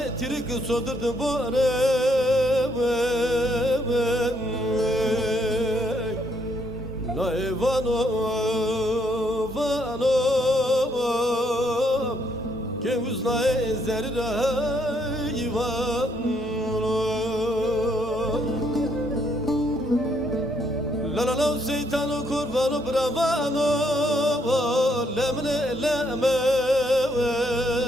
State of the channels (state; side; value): normal; both; correlation 0.71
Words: tirik sodurdu bore Na evano vano Ke uzna ezerira ivano La la la şeytano kurvano bravano Lemne lemen